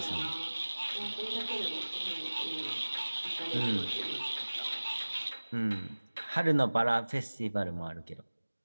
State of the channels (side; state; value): both; inverted; correlation -1.00